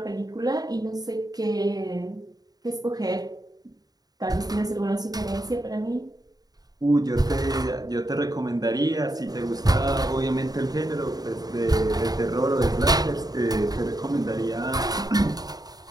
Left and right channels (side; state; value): left; late; 0.19 ms